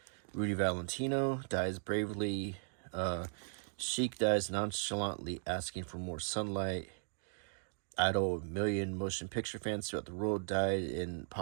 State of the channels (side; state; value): left; silent; digital silence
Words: Rudy Valentino dies bravely. Sheik dies nonchalantly, asking for more sunlight. Idol, a million motion picture fans throughout the world, died in